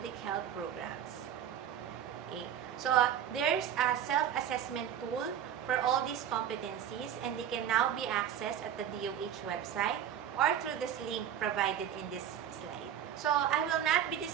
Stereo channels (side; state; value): left; quieter; 9.7 dB